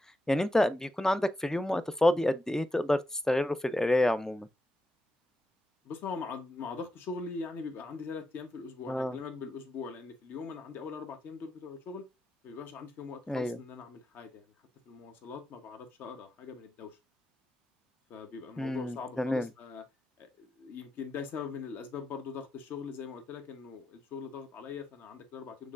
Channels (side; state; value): both; normal; correlation 0.87